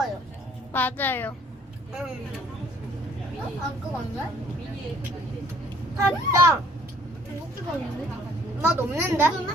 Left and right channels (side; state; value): both; normal; correlation 0.59